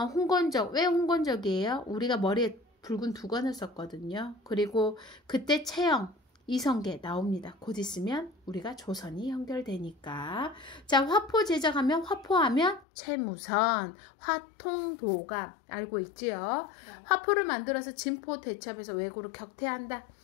홍건적, 왜 홍건적이에요? 우리가 머리에 붉은 두건을 썼거든요. 그리고 그때 채영, 이성계 나옵니다. 곧 있으면 우리가 조선이 연결되니까. 자, 화포 제작하면, 화포하면 최무선, 화통도가 알고 있지요? 네. 화포를 만들어서 진포 대첩에서 왜구를 격퇴한다.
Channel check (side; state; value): right; drops out; at 12.9 s